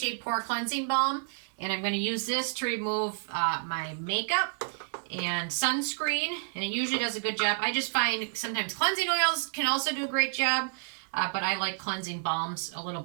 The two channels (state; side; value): silent; left; digital silence